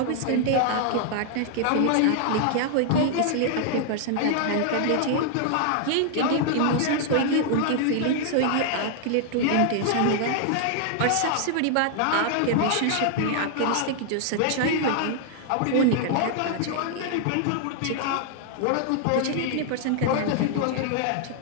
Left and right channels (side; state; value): both; different; correlation 0.00